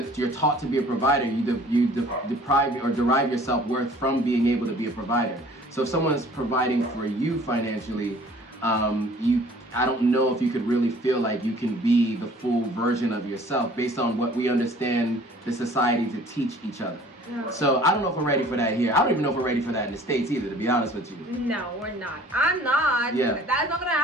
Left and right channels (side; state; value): both; normal; correlation 0.51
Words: you're taught to be a provider, you deprive or derive your self-worth from being able to be a provider. So if someone's providing for you financially, I don't know if you could really feel like you can be the full version of yourself based on what we understand the society to teach each other. Yeah. So I don't know if we're ready for that here. I don't even know if we're ready for that in the States either, to be honest with you. No, we're not. I'm not. Yeah. That's not gonna